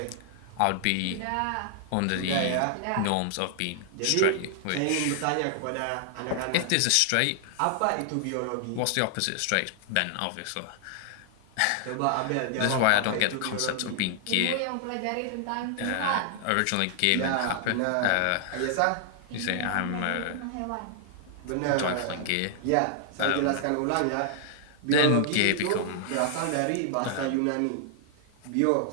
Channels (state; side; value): different; both; correlation 0.00